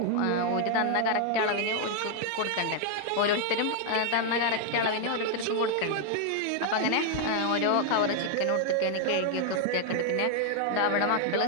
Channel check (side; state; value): both; different; correlation 0.00